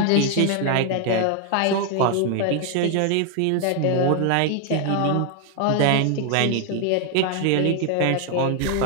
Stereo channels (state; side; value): different; both; correlation 0.00